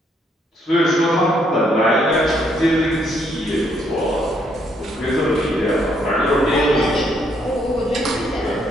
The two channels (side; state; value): both; normal; correlation 0.71